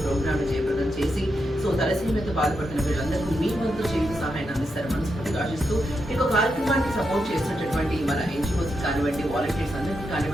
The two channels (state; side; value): normal; both; correlation 0.84